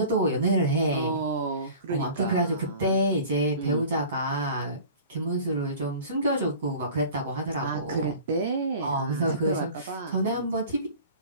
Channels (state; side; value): inverted; both; correlation -0.41